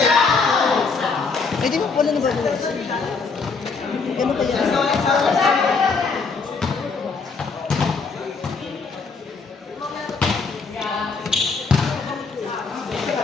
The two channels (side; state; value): right; quieter; 4.6 dB